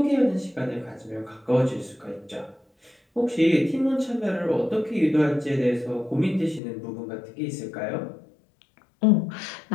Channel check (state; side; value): drops out; right; at 6.6 s